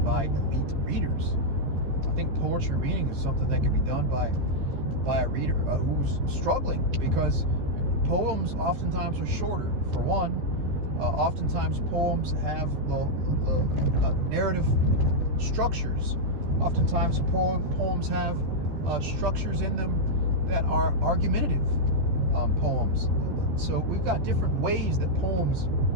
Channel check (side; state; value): left; late; 14 ms